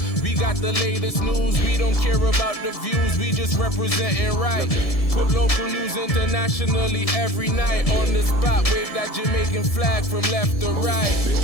we got the latest news. We don't care about the views, we just representing right. Put local news internationally every night. On the spot, wave that Jamaican flag from left to right.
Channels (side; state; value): right; late; 1.7 ms